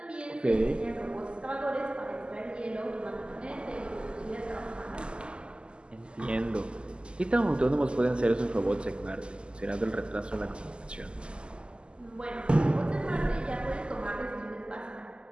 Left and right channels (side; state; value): left; late; 0.050 ms